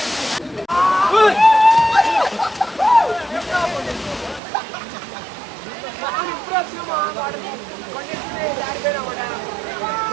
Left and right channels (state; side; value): drops out; left; at 4.4 s